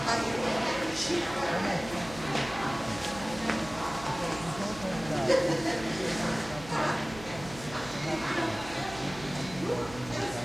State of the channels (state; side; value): noise; right; hum, 15 dB below the sound